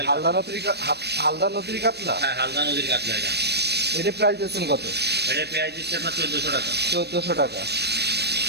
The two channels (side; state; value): left; late; 0.48 ms